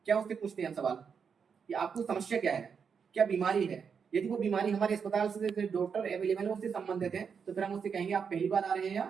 क्या उससे पूछते हैं हम सवाल कि आपको समस्या क्या है, क्या बीमारी है। यदि वो बीमारी हमारे अस्पताल से डॉक्टर अवेलेबल है उससे संबंधित है तो फिर हम उससे कहेंगे आप पहली बार आ रहे हैं या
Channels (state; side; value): quieter; left; 6.4 dB